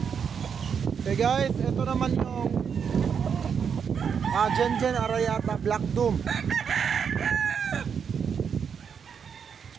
Okay guys, ito naman yung Gen Arayata Black Doom.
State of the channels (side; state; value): left; quieter; 7.0 dB